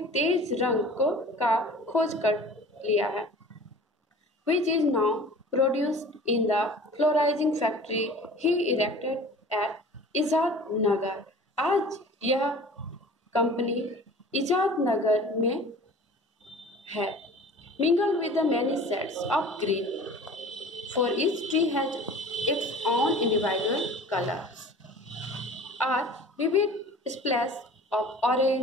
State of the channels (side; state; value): both; normal; correlation 0.43